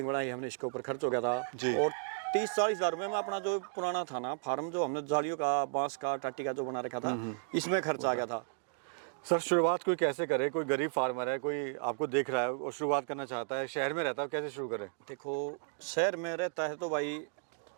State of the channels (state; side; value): silent; left; digital silence